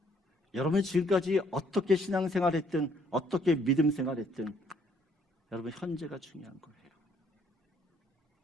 여러분이 지금까지 어떻게 신앙생활했든 어떻게 믿음 생활했든 여러분 현재가 중요한 거예요.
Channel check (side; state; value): both; normal; correlation 0.66